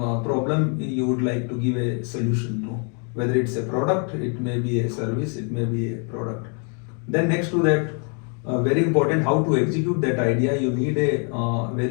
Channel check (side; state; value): right; quieter; 40.0 dB